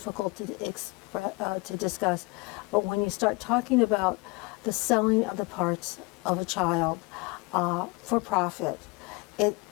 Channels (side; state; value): right; quieter; 26.6 dB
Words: to discuss, but when you start talking about the selling of the parts of a child for profit,